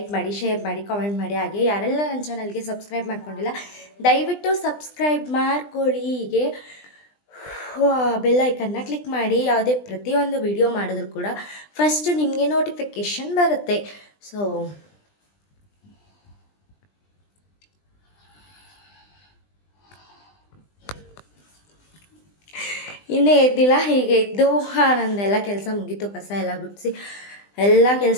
ಮಾಡಿ, ಶೇರ್ ಮಾಡಿ, ಕಾಮೆಂಟ್ ಮಾಡಿ. ಹಾಗೆ ಯಾರೆಲ್ಲ ನನ್ನ ಚಾನಲ್ಗೆ ಸಬ್ಸ್ಕ್ರೈಬ್ ಮಾಡ್ಕೊಂಡಿಲ್ಲ ದಯವಿಟ್ಟು ಸಬ್ಸ್ಕ್ರೈಬ್ ಮಾಡ್ಕೊಳ್ಳಿ. ಹೀಗೆ ಬೆಲ್ ಐಕನ್ನ ಕ್ಲಿಕ್ ಮಾಡಿ. ಯಾವುದೇ ಪ್ರತಿಯೊಂದು ವಿಡಿಯೋ ಮಾಡಿದ್ರು ಕೂಡ ಫಸ್ಟ್ ನಿಮಗೆ ನೋಟಿಫಿಕೇಷನ್ ಬರುತ್ತೆ. ಸೊ ಇನ್ನೇ ಎದ್ದಿಲ್ಲ. ಹೀಗೆ ಇದ್ದು ನಂದೆಲ್ಲ ಕೆಲಸ ಮುಗೀತು. ಕಸ ಎಲ್ಲ ಗುಡಿಸಿ ಎಲ್ಲ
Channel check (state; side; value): late; right; 20 ms